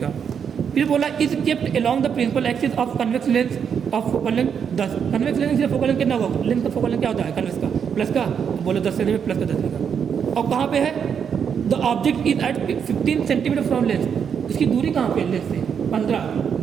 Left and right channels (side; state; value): left; quieter; 7.4 dB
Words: फिर बोला is kept along the principal axis of convex lens of focal length 10, convex lens से फोकल लेंथ कितना होगा, लेंस का फोकल लेंथ क्या होता है कन्वेक्स का प्लस का, बोलो 10 सेंटीमीटर प्लस का 10 लिखा, और कहाँ पे है, the object is at 15 centimetre from lens, इसकी दूरी कहाँ पे है लेंस से 15,